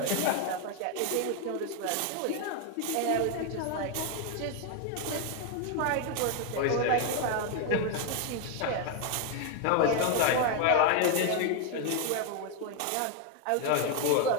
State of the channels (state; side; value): different; both; correlation 0.01